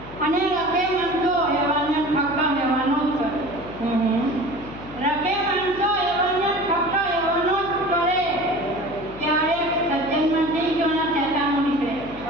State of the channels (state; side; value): noise; left; hum, 17 dB below the sound